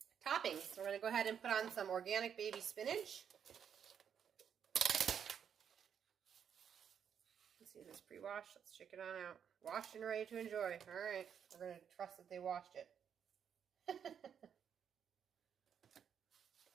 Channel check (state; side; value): quieter; left; 8.0 dB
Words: toppings. We're going to go ahead and put on some organic baby spinach. Let's see, this is pre-washed. Let's check it on out. Washed and ready to enjoy. All right. We're going to trust that they washed it.